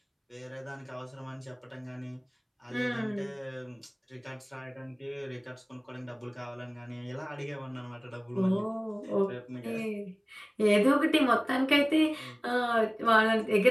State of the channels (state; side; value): identical; both; correlation 1.00